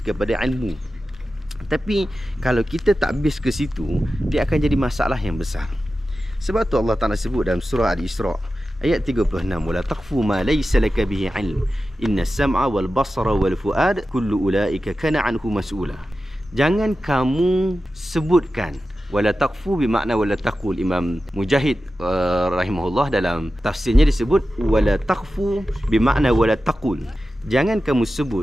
kepada ilmu. Tapi kalau kita tak base ke situ, dia akan jadi masalah yang besar. Sebab tu Allah Ta'ala sebut dalam surah Al-Isra ayat 36, wala taqfu ma laysa laka bihi ilm innas sam'a wal basara wal fuad kullu ulaika kana anhu mas'ula. Jangan kamu sebutkan. Wala taqfu bermakna wala taqul. Imam Mujahid rahimahullah dalam tafsirnya disebut wala taqfu bermakna wala taqul. Jangan kamu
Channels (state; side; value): normal; both; correlation 0.93